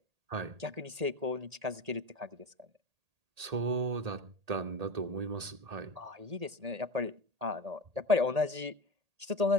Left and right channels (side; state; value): left; late; 1.8 ms